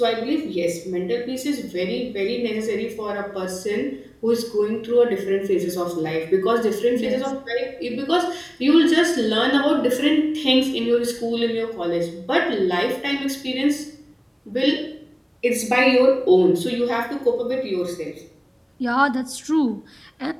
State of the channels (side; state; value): both; identical; correlation 1.00